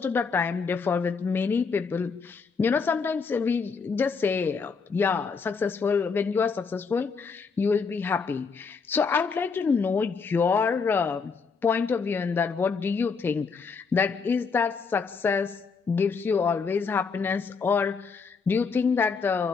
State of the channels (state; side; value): quieter; right; 5.2 dB